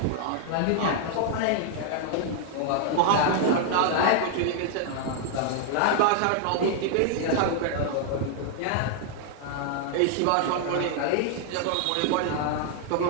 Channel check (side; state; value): both; different; correlation 0.00